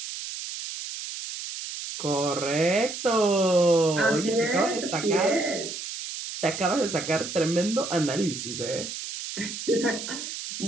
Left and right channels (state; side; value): noise; right; hiss, 8 dB below the sound